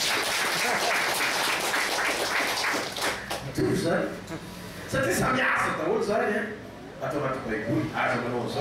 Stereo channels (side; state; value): both; identical; correlation 1.00